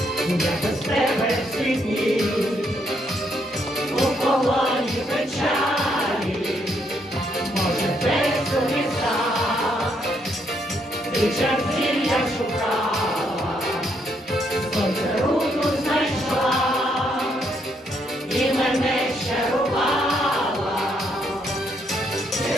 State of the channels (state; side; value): normal; both; correlation 0.74